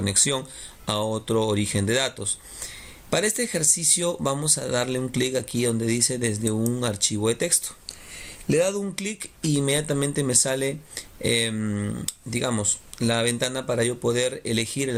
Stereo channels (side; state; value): both; identical; correlation 1.00